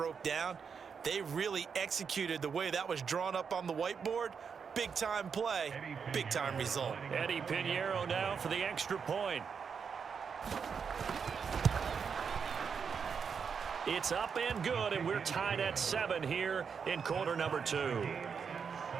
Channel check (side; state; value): left; quieter; 6.3 dB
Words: down. They really executed the way that was drawn up on the whiteboard. Big-time play, big-time result. Eddie Pinheiro now for the extra point. It's up and good, and we're tied at 7 here in quarter number 2.